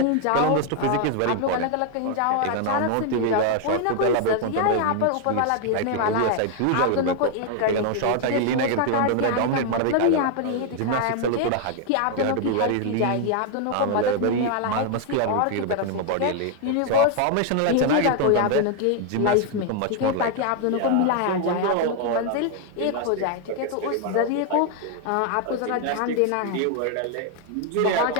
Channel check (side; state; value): both; different; correlation 0.00